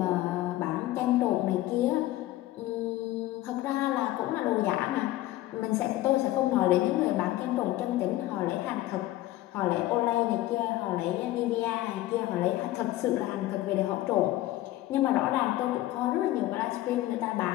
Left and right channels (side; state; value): right; quieter; 15.7 dB